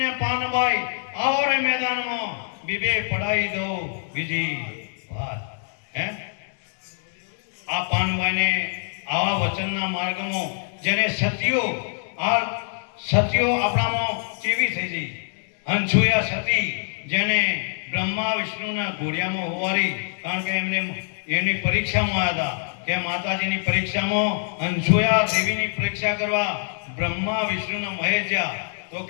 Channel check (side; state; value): right; silent; 62 dB below the other